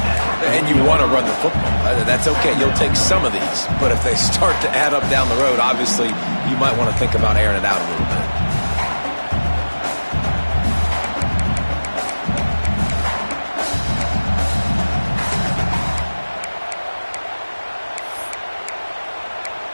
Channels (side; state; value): both; inverted; correlation -1.00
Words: And you want to run the football. That's okay. You'll take some of these. But if they start to add up down the road, obviously, you might want to think about airing it out a little bit.